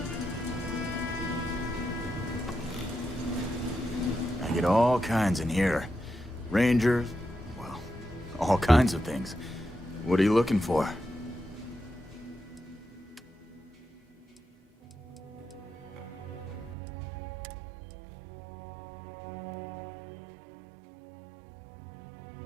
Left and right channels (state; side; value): drops out; left; at 16.8 s